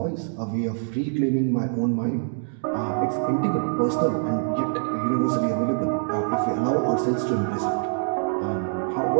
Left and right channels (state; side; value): silent; left; digital silence